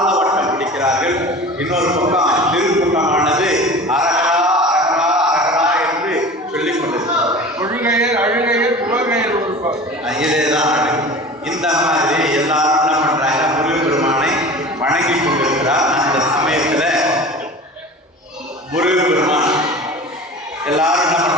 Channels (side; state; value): both; normal; correlation 0.37